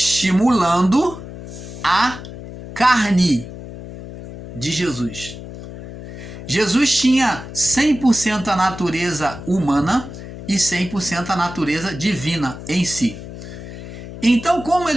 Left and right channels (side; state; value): left; noise; hum, 12 dB below the sound